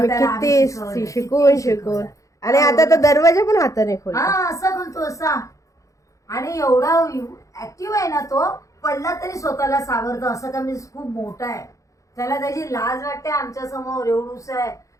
त्याला किती शिकवलं, शिकवून किती शिकवून. आणि आता तर दरवाजा पण हाताने खोल. हा असा बोलतो असा. आणि एवढा ऍक्टिव्ह आहे ना तो. पडला तरी स्वतःला सावरतो. असं का मी खूप मोठा आहे. त्याला त्याची लाज वाटते आमच्या समोर. एवढूस आहे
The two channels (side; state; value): right; late; 0.16 ms